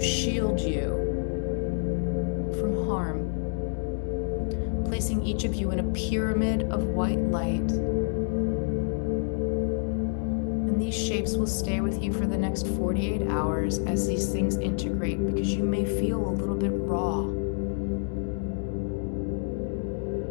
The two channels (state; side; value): silent; right; digital silence